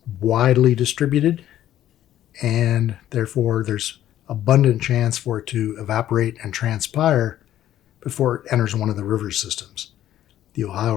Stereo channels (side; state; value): right; quieter; 12.4 dB